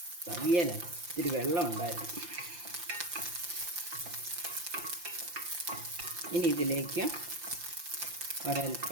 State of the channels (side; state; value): left; late; 5.8 ms